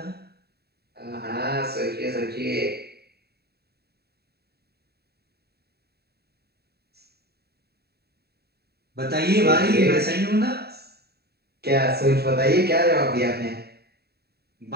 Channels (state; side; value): late; left; 0.47 ms